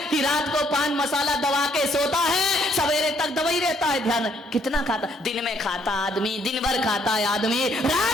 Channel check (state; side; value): normal; both; correlation 0.68